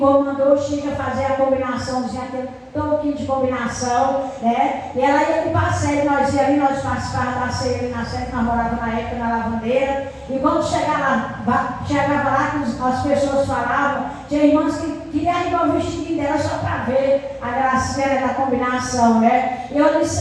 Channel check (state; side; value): identical; both; correlation 1.00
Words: o Chico a fazer a combinaçãozinha, aquele pouquinho de combinação, né? E ela ia com passeio, nós ia ali, nós participávamos da ceia ali na sede, nós morávamos na época na Lavandeira, e quando chegava lá que as pessoas falavam, tinha irmãs que queriam arribar o vestidinho dela só para ver a gracinha da combinação, né? Eu ali